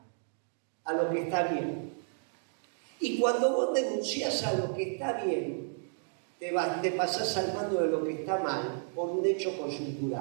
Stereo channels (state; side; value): silent; left; digital silence